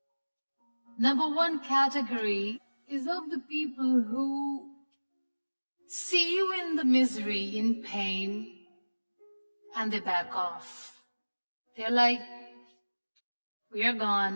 Number 1 category is of the people who see you in the misery, in pain, and they back off. They're like, we're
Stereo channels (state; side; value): inverted; both; correlation -1.00